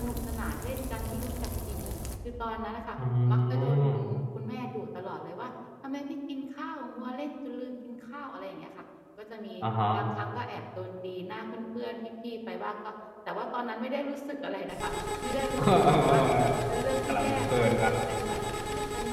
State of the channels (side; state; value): both; identical; correlation 1.00